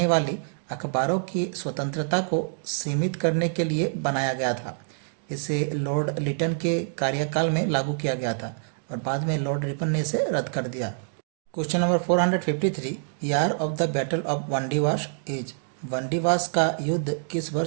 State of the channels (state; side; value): silent; left; digital silence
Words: वाली अखबारों की स्वतंत्रता को सीमित करने के लिए बनाया गया था। इसे लॉर्ड लिटन के कार्यकाल में लागू किया गया था और बाद में लॉर्ड रिपन ने इसे रद्द कर दिया। Question number 453। Year of the battle of Wandiwash is. Wandiwash का युद्ध किस